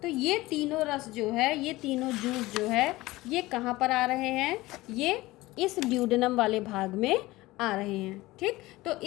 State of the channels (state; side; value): quieter; right; 19.1 dB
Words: तो ये तीनों रस जो है, ये तीनों जूस जो है, ये कहाँ पर आ रहे हैं? ये इस ड्यूडेनम वाले भाग में आ रहे हैं। ठीक, तो